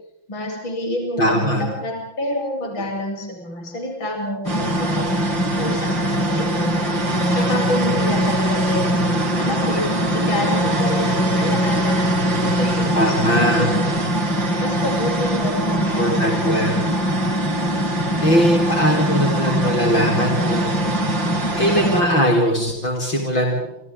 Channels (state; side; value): late; right; 5.9 ms